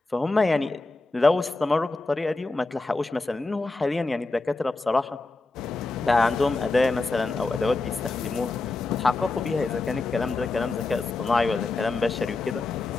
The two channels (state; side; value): quieter; right; 3.4 dB